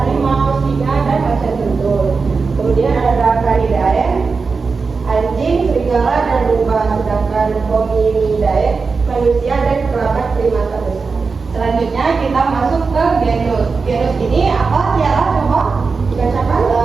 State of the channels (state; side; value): quieter; left; 4.7 dB